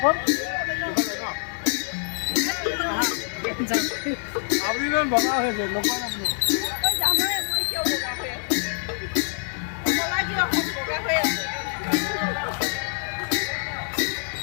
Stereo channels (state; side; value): silent; right; digital silence